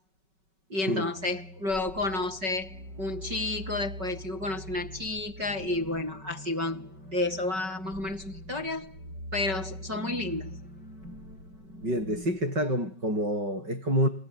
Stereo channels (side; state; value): left; late; 5.3 ms